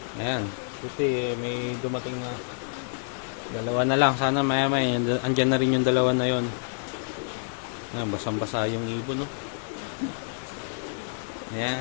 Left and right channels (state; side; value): silent; right; digital silence